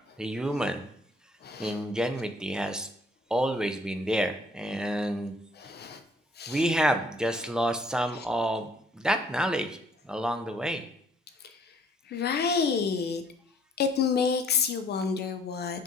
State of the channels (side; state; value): both; normal; correlation 0.62